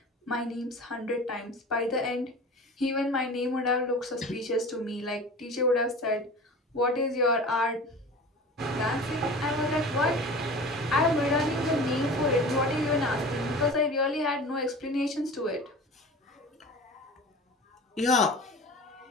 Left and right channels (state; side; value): normal; both; correlation 0.37